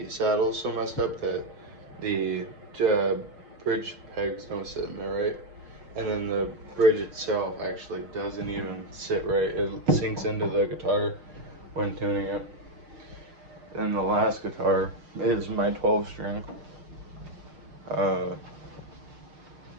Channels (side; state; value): left; late; 6.6 ms